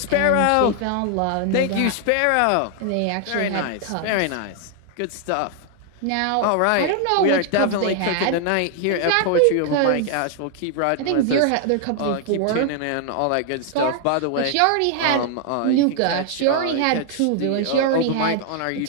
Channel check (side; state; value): both; different; correlation 0.00